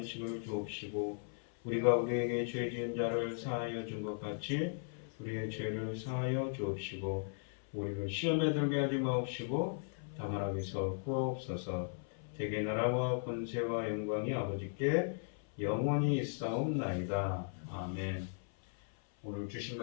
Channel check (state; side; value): silent; right; 53 dB below the other